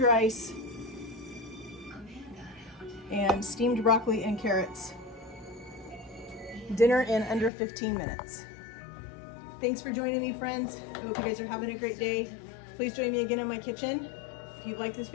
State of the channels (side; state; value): right; drops out; at 7.5 s